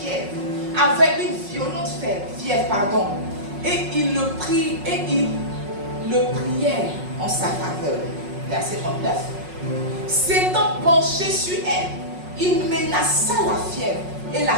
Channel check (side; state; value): left; late; 5.4 ms